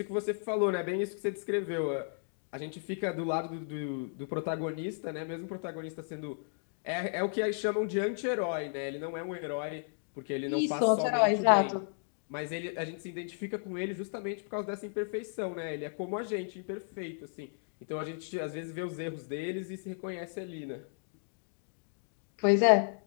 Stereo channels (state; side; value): silent; right; digital silence